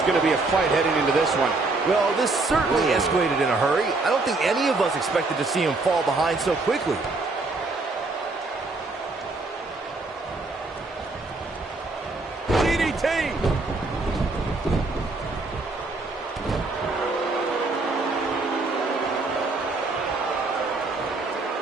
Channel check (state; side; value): quieter; left; 3.4 dB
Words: going to be a fight heading into this one. Well, this certainly escalated in a hurry. I don't think any of us expected to see him fall behind so quickly.